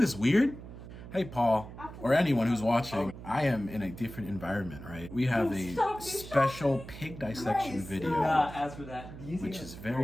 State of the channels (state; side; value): noise; right; hum, 13 dB below the sound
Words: this weird? Hey, Paul, or anyone who's watching, I am in a different environment, right? We have a special pig dissection video, which is